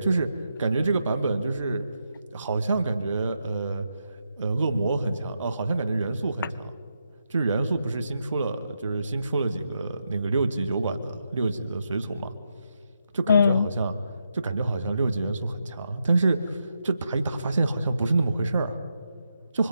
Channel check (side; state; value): both; inverted; correlation -0.83